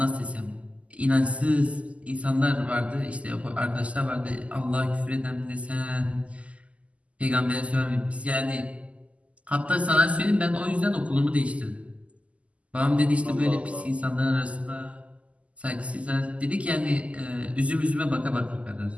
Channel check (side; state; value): left; late; 0.065 ms